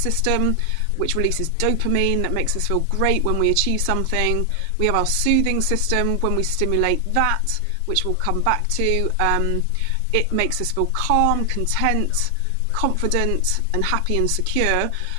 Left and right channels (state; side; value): different; both; correlation 0.00